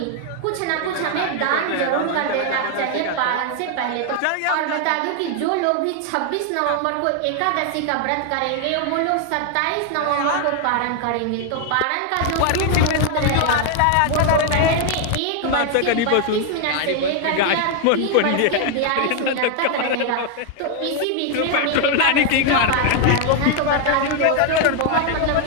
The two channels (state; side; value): different; both; correlation 0.00